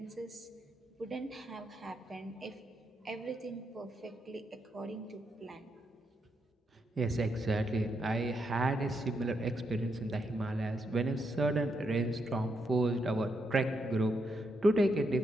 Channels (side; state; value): both; normal; correlation 0.80